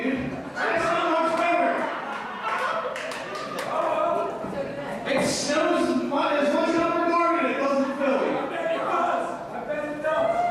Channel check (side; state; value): both; identical; correlation 1.00